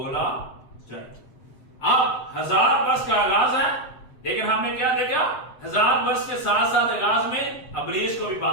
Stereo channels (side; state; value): right; late; 8.0 ms